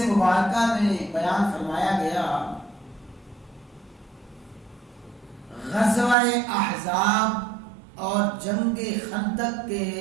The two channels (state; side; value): drops out; left; at 6.2 s